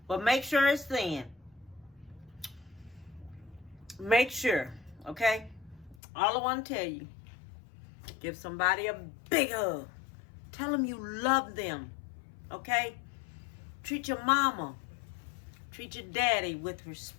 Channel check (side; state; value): right; drops out; at 6.0 s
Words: But make sure it's thin. Make sure, okay? All I want to tell you, give somebody a big hug. Tell them you love them, okay? Treat your mama, treat your daddy with